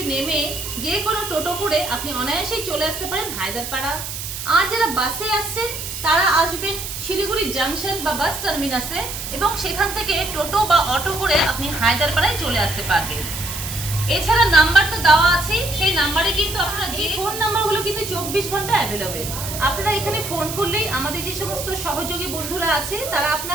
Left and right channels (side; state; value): right; noise; hiss, 7 dB below the sound